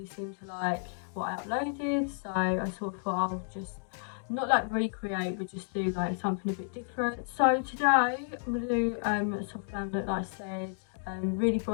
seemed to like what I uploaded, so I sort of thought I'll just not like recreate but just do like something a bit different. So today I'm going to do a soft glam look like I said, really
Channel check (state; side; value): silent; right; digital silence